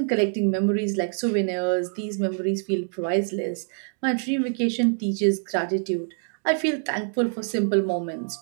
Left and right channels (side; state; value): left; silent; 56 dB below the other